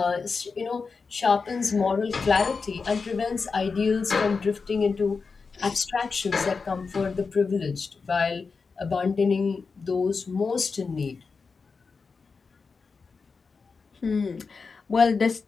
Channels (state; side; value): quieter; right; 4.8 dB